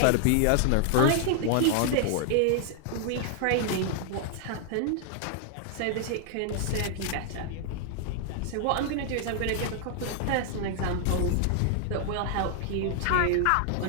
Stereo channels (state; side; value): different; both; correlation 0.00